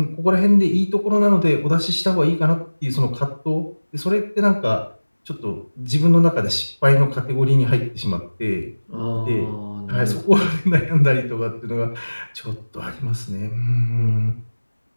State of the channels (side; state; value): both; inverted; correlation -1.00